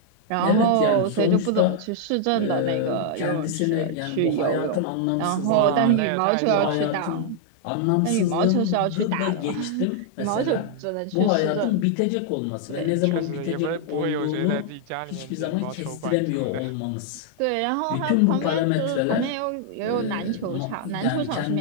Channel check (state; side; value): different; both; correlation -0.01